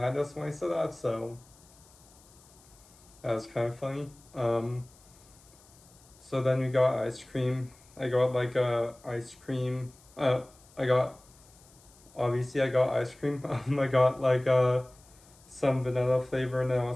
us when I said that. So that was kind of funny. So then we got ice cream. I got like ice cream. I got obviously I got ice cream. I got like some vanilla flavor and then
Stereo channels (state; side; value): noise; left; hiss, 26 dB below the sound